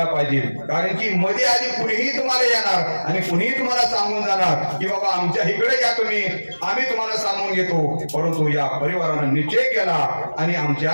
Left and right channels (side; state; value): both; inverted; correlation -1.00